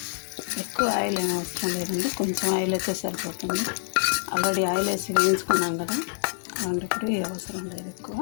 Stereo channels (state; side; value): silent; right; 61 dB below the other